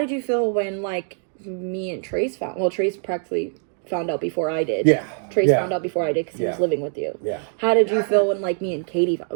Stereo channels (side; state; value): left; silent; 59 dB below the other